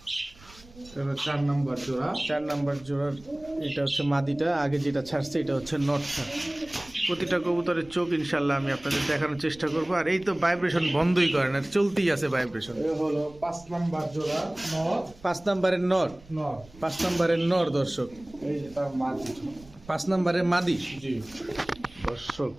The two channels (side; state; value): right; noise; rumble, 23 dB below the sound